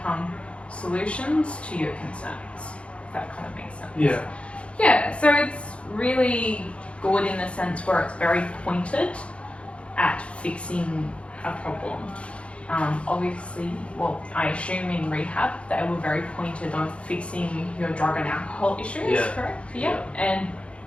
solutions to your concerns. If that kind of makes sense. Yeah. Yeah, so it's really good in the sense where it's very pointed at fixing a problem. Obviously, I assume in rehab they were very pointed on fixing your drug and alcohol issues, correct? Yeah. And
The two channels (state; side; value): late; right; 0.060 ms